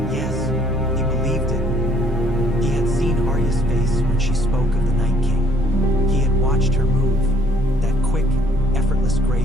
Yes, he believed it. He had seen Arya's face when she spoke of the Night King. He had watched her move, that quick, effortless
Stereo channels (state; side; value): normal; both; correlation 0.63